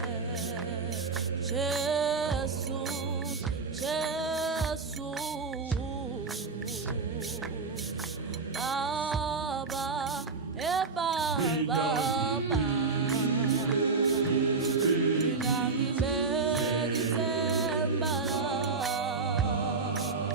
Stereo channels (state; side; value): quieter; left; 4.4 dB